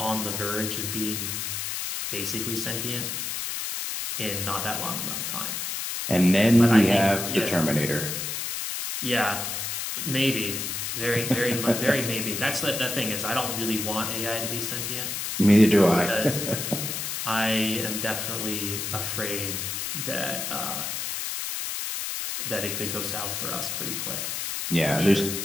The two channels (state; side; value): noise; left; hiss, 3 dB below the sound